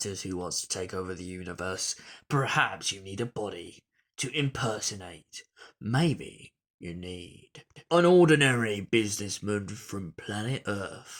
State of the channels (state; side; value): identical; both; correlation 1.00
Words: who wants to take over the universe? Perhaps you need a body to impersonate. Maybe you need an ordinary businessman from planet